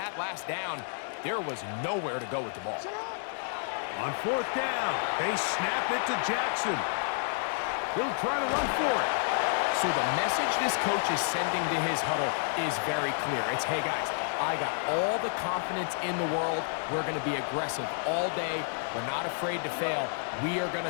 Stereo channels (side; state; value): right; silent; digital silence